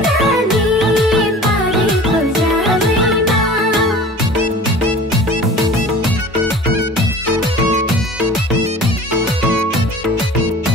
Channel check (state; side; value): normal; both; correlation 0.42